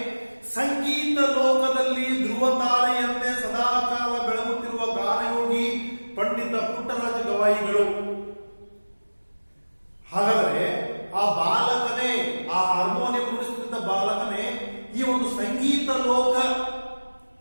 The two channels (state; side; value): inverted; both; correlation -1.00